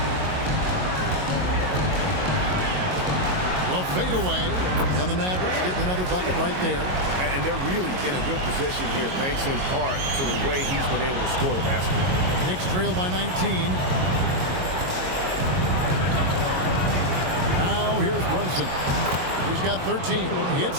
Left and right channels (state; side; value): late; left; 22 ms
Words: Well, fade away, and the Mavericks getting another bucket right there. And they're really in a good position here, thanks in part to the way he's been able to score the basketball. Knicks trail by 19. Now here's Brunson. He's got 13. It's